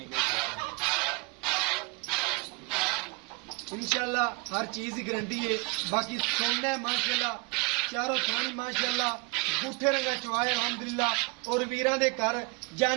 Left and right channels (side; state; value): left; quieter; 28.7 dB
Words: इंशाअल्लाह हर चीज की गारंटी है। बाकी सोना है माशाअल्लाह, चारों थानी माशाअल्लाह, बूठे रंगा चुआए अल्हम्दुलिल्लाह। और वीरां दे घर